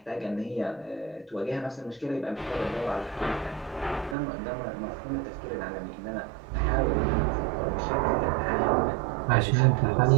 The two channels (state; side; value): drops out; left; at 4.2 s